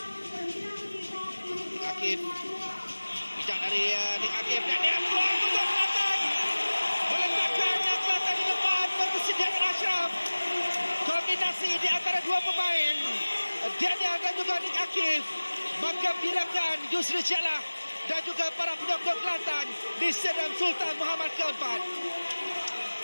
Akif. Bijak dari Nik Akif, dan dia peluang untuk Kelantan. Meletakkan Kelantan di depan bersedia dengan Ashraf. Kombinasi di antara dua pemain, Tahniah dan juga Nik Akif, maka bilangan Yusri Jalah dan juga para penyokong Kelantan di Stadium Sultan Muhammad ke-4.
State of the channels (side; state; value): both; inverted; correlation -1.00